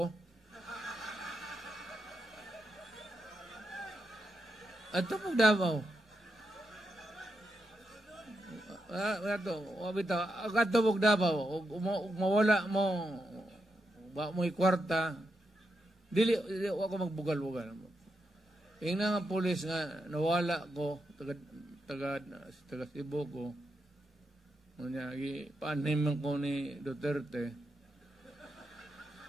At ito pag Davao. Ato pag Davao, mawala mo, ba mo ikwarta, dili ako magbugal-bugal. Yung nga pulis nga, nawala ko, taga Cebu ko, paaniman ko ni Duterte,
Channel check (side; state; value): both; normal; correlation 0.84